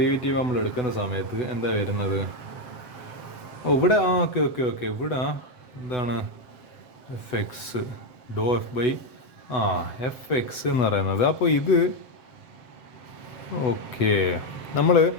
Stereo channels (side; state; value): right; late; 8.0 ms